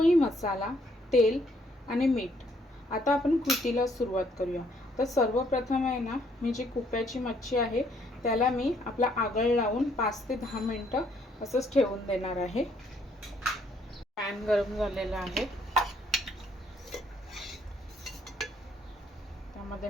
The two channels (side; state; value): both; normal; correlation 0.68